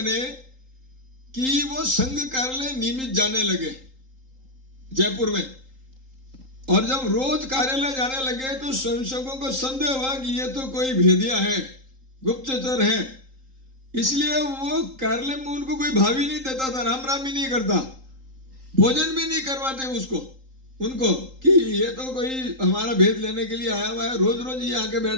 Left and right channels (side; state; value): left; late; 3.8 ms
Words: कि वो संघ कार्यालय नियमित जाने लगे जयपुर में। और जब रोज कार्यालय जाने लगे तो स्वयंसेवकों को संदेह हुआ कि ये तो कोई भेदिया है, गुप्तचर है, इसलिए वो कार्यालय में उनको कोई भाव ही नहीं देता था, राम राम ही नहीं करता, भोजन भी नहीं करवाते उनको कि ये तो कोई हमारा भेद लेने के लिए आया हुआ है, रोज रोज ये आके बैठ